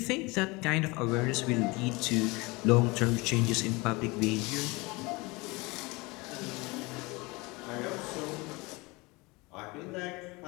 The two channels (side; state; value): right; quieter; 24.8 dB